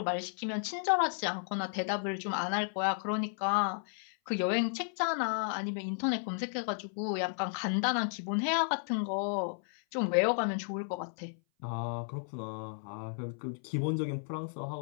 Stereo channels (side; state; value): right; silent; 55 dB below the other